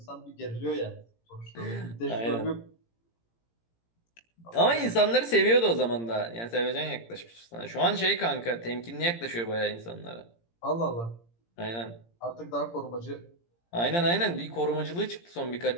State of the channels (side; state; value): right; late; 17 ms